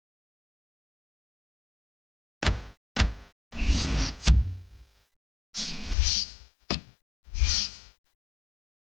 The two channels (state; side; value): drops out; right; at 6.0 s